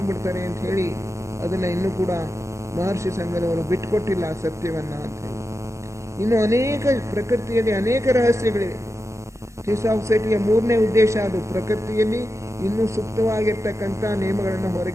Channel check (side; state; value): left; late; 0.14 ms